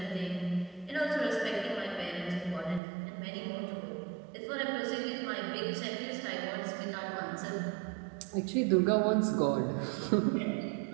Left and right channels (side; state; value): left; drops out; at 2.8 s